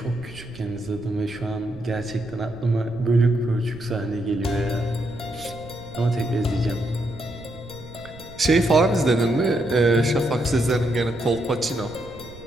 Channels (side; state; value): right; noise; rumble, 18 dB below the sound